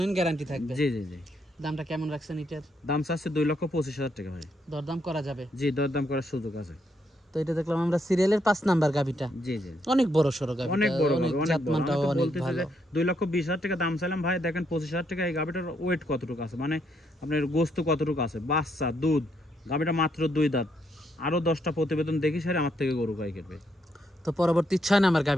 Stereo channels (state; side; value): normal; both; correlation 0.76